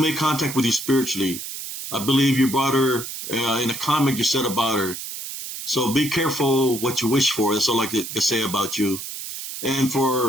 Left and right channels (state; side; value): noise; right; hiss, 8 dB below the sound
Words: contact with you spiritually. I believe you brought her in a comment you said about her. So be careful what you wish for. That's all I can say about you. And